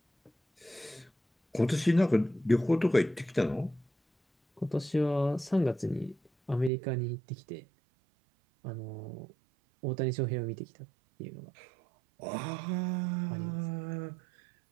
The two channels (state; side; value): drops out; left; at 6.7 s